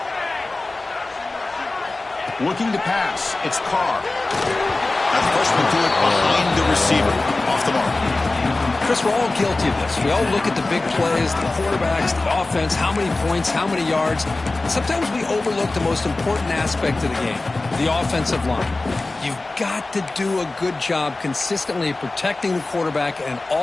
Looking to pass. It's Carr. That freshman threw it behind the receiver. Off the mark. Chris, we're all guilty of this. We all look at the big plays, the quarterbacks, the offense, how many points, how many yards. And sometimes we overlook the most important aspect of the game, the offensive line. You've got to do a good job consistently protecting the quarterback, and it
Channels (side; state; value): right; quieter; 3.2 dB